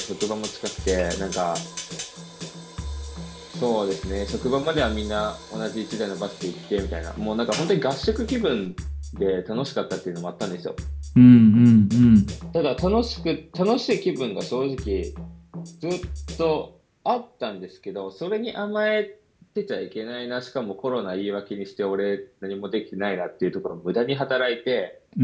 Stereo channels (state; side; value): identical; both; correlation 1.00